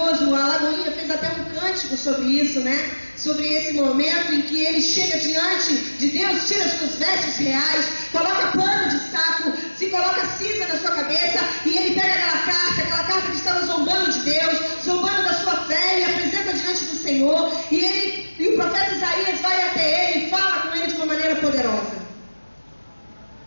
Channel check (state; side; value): inverted; both; correlation -1.00